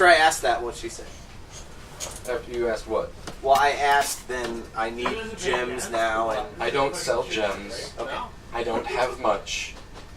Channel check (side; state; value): both; identical; correlation 1.00